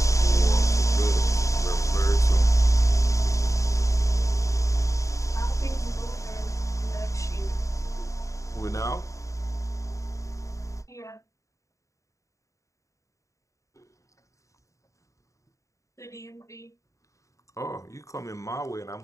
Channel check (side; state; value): right; late; 0.15 ms